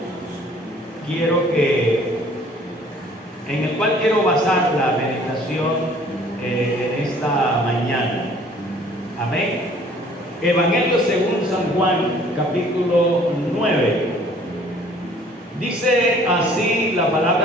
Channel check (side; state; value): both; normal; correlation 0.55